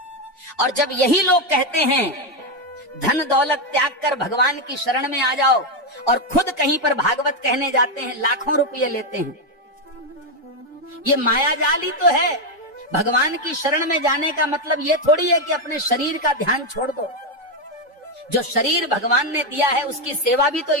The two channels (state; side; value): normal; both; correlation 0.06